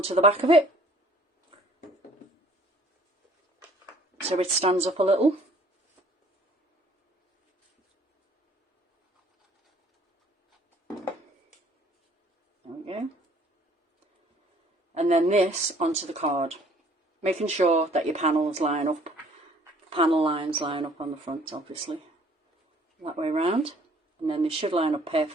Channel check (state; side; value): normal; both; correlation 0.56